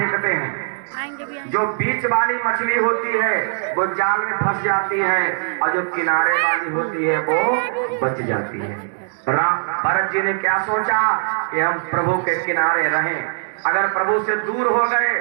हैं। जो बीच वाली मछली होती है वो जाल में फंस जाती है, और जो किनारे वाली होती है वो बच जाती है। भरत जी ने क्या सोचा कि हम प्रभु के किनारे रहें। अगर प्रभु से दूर हो गए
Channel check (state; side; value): silent; left; digital silence